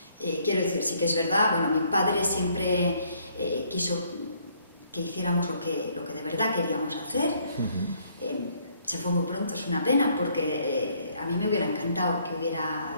Quiero decir, sí que es verdad, bueno, mi padre siempre quiso que hiciéramos lo que de verdad queríamos hacer. Se fue muy pronto, es una pena, porque a mí me hubiera encantado que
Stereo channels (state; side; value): inverted; both; correlation -0.66